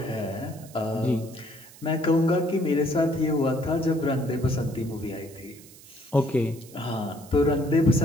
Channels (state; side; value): noise; right; hiss, 21 dB below the sound